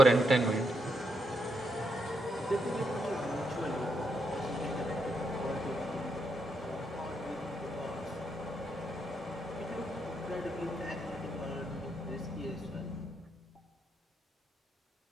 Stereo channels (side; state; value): both; normal; correlation 0.80